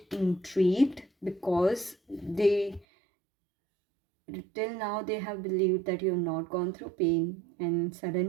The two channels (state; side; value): drops out; left; at 2.9 s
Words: intrigued, because they till now they have believed that you have not gone through pain, and